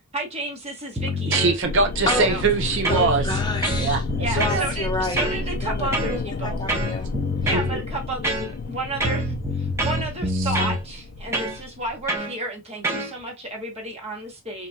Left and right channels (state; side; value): normal; both; correlation 0.19